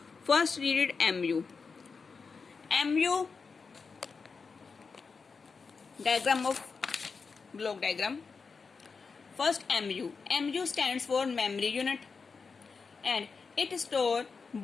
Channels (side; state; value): right; quieter; 5.0 dB